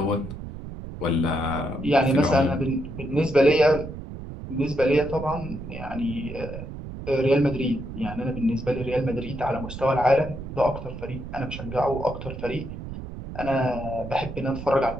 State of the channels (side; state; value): right; noise; rumble, 10 dB below the sound